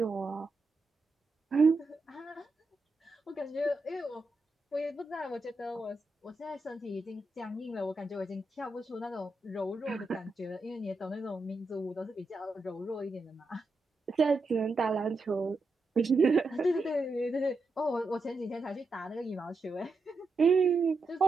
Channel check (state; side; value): quieter; left; 3.1 dB